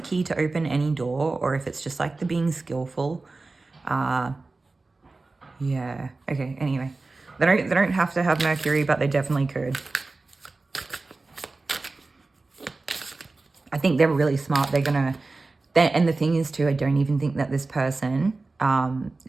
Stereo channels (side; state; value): left; quieter; 3.5 dB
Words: key to open any door, or if it's just like the being skillful. Yeah, okay, anyway. They don't have to have Mercury, but they definitely could. I think they're really smart. And the thing is too, I don't even think that this person,